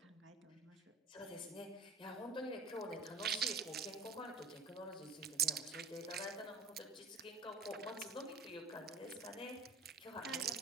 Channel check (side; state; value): left; quieter; 3.8 dB